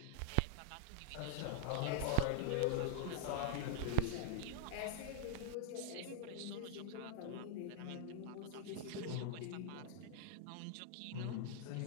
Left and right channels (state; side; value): different; both; correlation 0.00